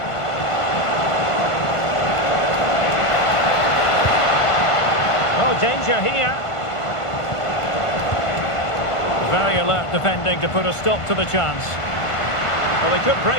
Oh, danger here. Very alert defending to put a stop to the chance. Well, they could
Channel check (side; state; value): right; late; 1.5 ms